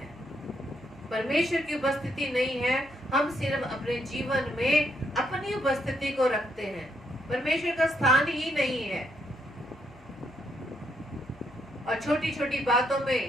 परमेश्वर की उपस्थिति नहीं है, हम सिर्फ अपने जीवन में अपनी उपस्थिति को रखते हैं, परमेश्वर का स्थान ही नहीं है। और छोटी छोटी बातों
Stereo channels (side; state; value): left; noise; hum, 25 dB below the sound